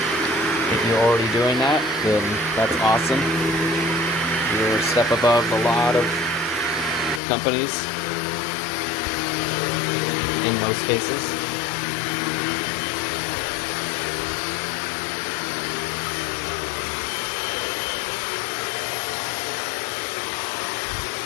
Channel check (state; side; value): drops out; right; at 7.2 s